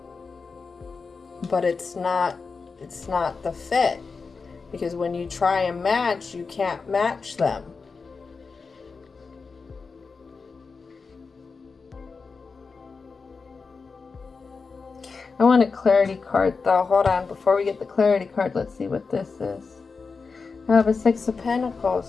But it's not the fit. Because when you try and match, you can't match them. I want a clarity card though. Hold on. Before we get the clarity card, let's see what this is. I have a 6 of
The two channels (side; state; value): right; quieter; 4.7 dB